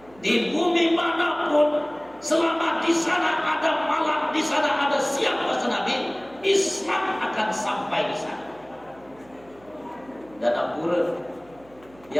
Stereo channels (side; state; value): right; noise; hum, 27 dB below the sound